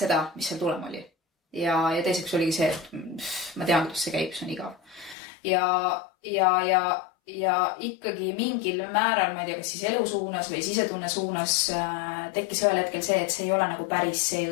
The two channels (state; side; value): drops out; right; at 5.2 s